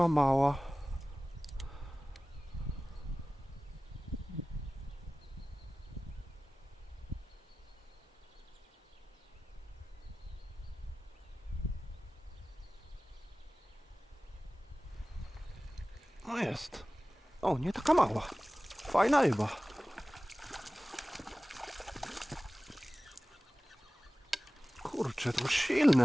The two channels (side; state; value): both; normal; correlation 0.97